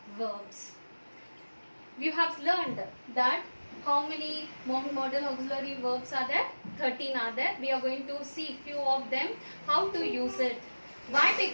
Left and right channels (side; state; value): both; inverted; correlation -1.00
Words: verbs. You have learned that how many modal auxiliary verbs are there? 13 are there. We are going to see few of them, how to use it. Why?